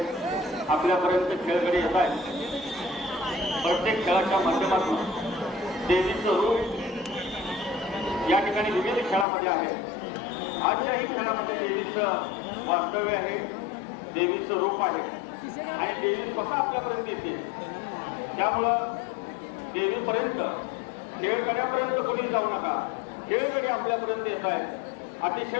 आपल्यापर्यंत खेळगडी येत आहे. प्रत्येक खेळाच्या माध्यमातून देवीचं रूप या ठिकाणी विविध खेळामध्ये आहे. आजच्याही खेळामध्ये देवीचं वास्तव्य आहे, देवीचं रूप आहे आणि देवी स्वतः आपल्यापर्यंत येते. त्यामुळं देवीपर्यंत, खेळगड्यापर्यंत कोणी जाऊ नका. खेळगडी आपल्यापर्यंत येत आहेत.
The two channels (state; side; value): drops out; right; at 9.2 s